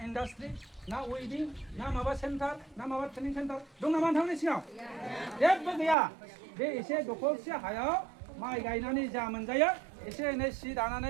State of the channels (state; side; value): drops out; left; at 6.0 s